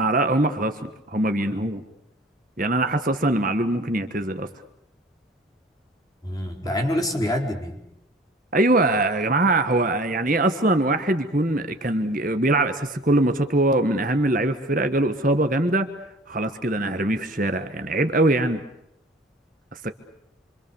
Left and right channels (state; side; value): normal; both; correlation 0.46